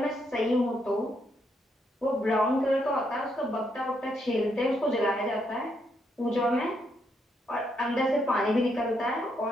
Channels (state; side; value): normal; both; correlation 0.77